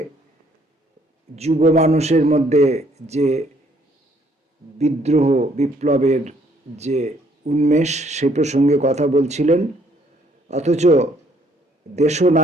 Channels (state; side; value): normal; both; correlation 0.65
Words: যুব মানুষের মধ্যে যে বিদ্রোহ বিপ্লবের যে উন্মেষ সে প্রসঙ্গে কথা বলছিলেন। অথচ